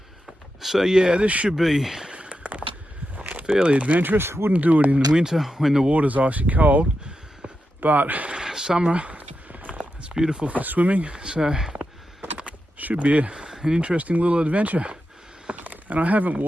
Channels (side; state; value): both; normal; correlation 0.88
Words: So yeah, this should be fairly adventurous. Wouldn't do it in the winter when the water's icy cold, but summer it's beautiful for swimming, so should be an interesting little adventure. And I haven't